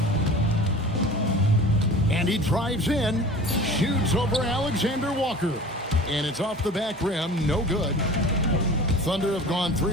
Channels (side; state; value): both; normal; correlation 0.40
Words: And he drives in. Shoots over Alexander Walker. And it's off the back rim, no good. Thunder have gone